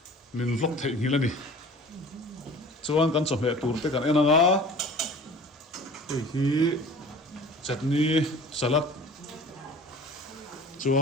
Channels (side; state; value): both; normal; correlation 0.43